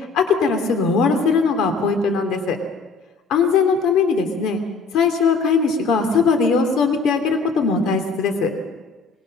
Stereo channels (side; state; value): right; quieter; 4.4 dB